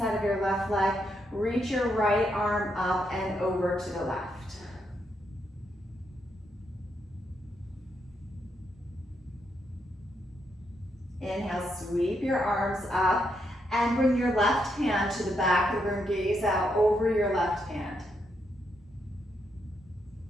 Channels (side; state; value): both; normal; correlation 0.79